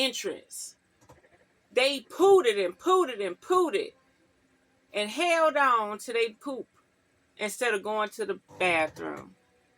they pooted and pooted and pooted and held on to their poop instead of going to the bathroom.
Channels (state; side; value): identical; both; correlation 1.00